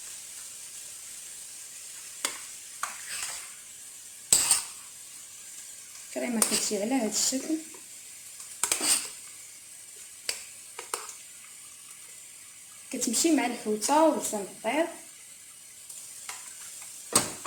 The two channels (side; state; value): both; identical; correlation 1.00